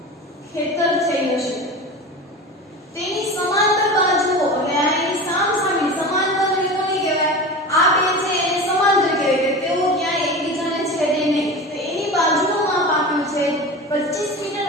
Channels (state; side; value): normal; both; correlation 0.30